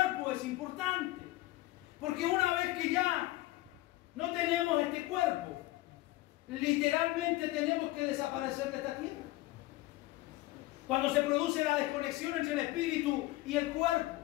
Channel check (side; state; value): right; quieter; 18.4 dB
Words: es importante. Porque una vez que ya no tenemos este cuerpo, literalmente tenemos que desaparecer de esta tierra. Cuando se produce la desconexión entre el espíritu y el cuerpo,